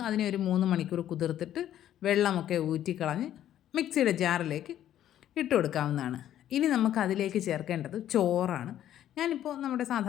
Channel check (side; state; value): right; quieter; 11.5 dB